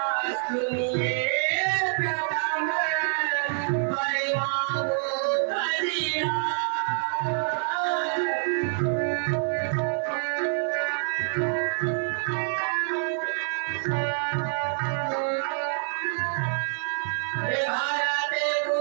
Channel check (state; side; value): silent; left; 60 dB below the other